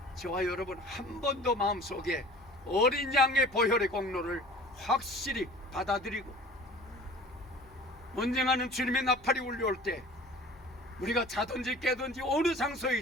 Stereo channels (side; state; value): left; noise; hum, 24 dB below the sound